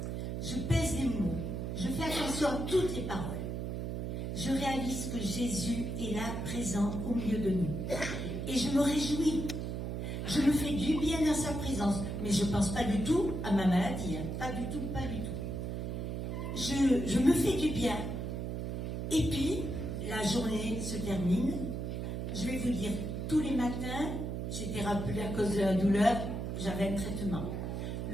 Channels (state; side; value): noise; right; hum, 3 dB below the sound